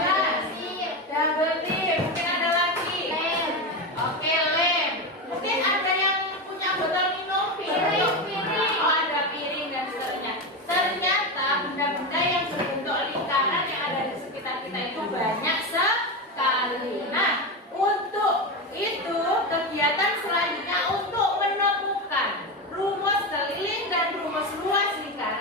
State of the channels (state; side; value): normal; both; correlation 0.16